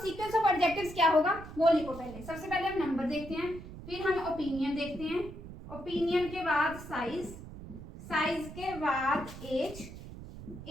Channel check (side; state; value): right; noise; rumble, 13 dB below the sound